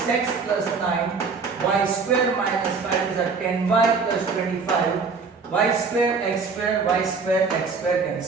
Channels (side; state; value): left; quieter; 4.8 dB